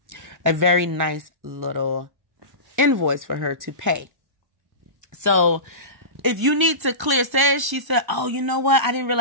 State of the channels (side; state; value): left; late; 1.0 ms